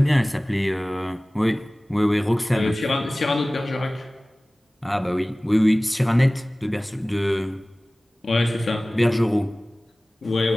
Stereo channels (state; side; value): normal; both; correlation 0.98